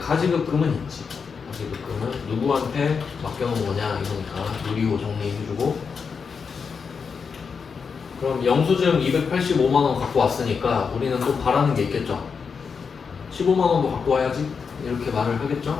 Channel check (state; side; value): quieter; right; 5.8 dB